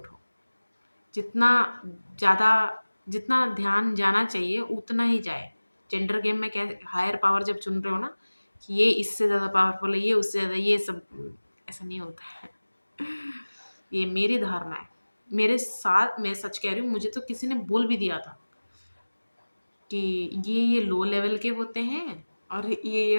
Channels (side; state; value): both; inverted; correlation -1.00